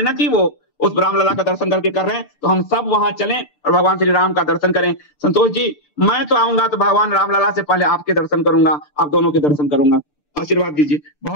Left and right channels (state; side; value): late; right; 6.8 ms